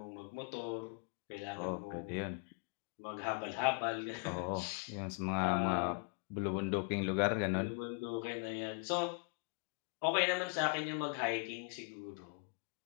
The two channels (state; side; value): quieter; right; 35.3 dB